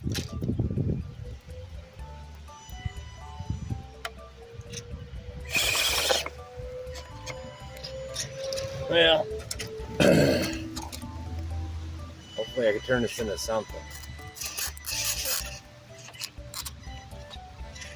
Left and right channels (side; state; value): both; identical; correlation 1.00